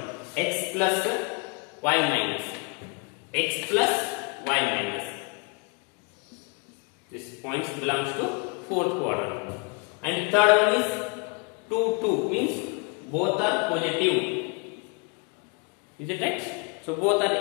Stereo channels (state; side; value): quieter; right; 30.3 dB